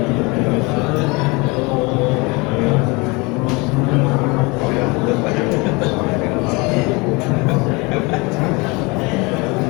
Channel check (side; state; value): right; quieter; 26.8 dB